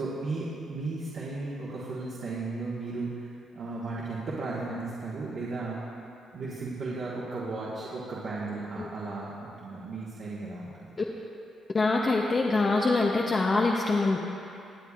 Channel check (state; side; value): normal; both; correlation 0.85